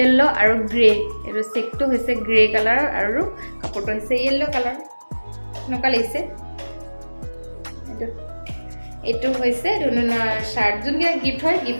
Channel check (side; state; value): both; inverted; correlation -1.00